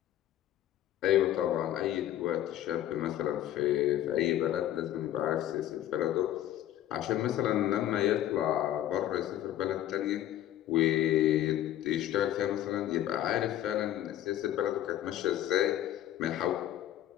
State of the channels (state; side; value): quieter; right; 12.5 dB